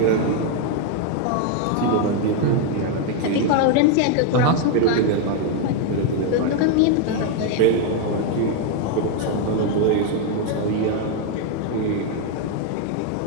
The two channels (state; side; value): different; both; correlation 0.01